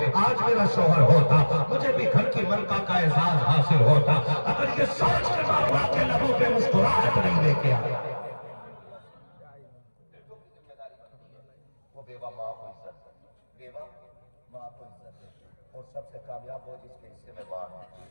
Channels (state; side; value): inverted; both; correlation -1.00